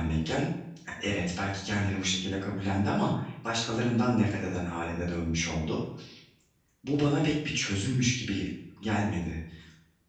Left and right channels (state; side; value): identical; both; correlation 1.00